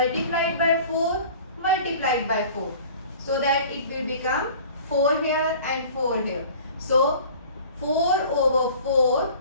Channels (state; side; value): inverted; both; correlation -0.45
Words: by 4 multiplied by 4. So that it will become 4 here and 4 here. So 4 over 4